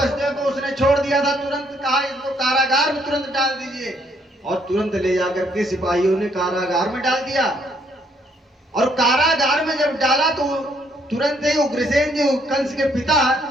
को उसने छोड़ दिया था, तुरंत कहा इसको कारागार में तुरंत डाल दीजिए, और तुरंत ले जाकर के सिपाहियों ने कारागार में डाल दिया। और कारागार में जब डाला तो तुरंत ही उग्रसेन जी कंस के पिता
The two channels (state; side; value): normal; both; correlation 0.69